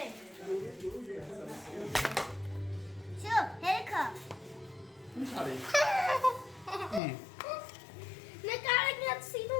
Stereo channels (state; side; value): drops out; right; at 7.0 s